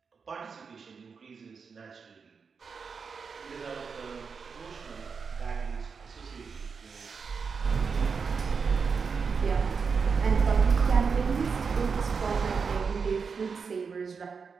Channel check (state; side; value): quieter; left; 5.5 dB